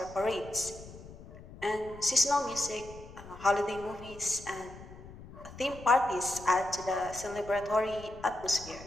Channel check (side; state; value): left; noise; rumble, 16 dB below the sound